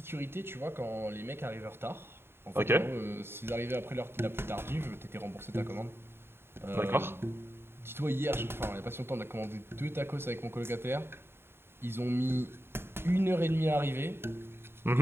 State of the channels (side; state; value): left; late; 0.11 ms